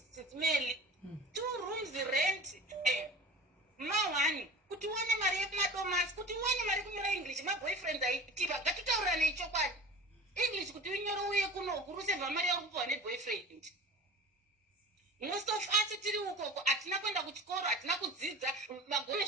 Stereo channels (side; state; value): both; normal; correlation 0.38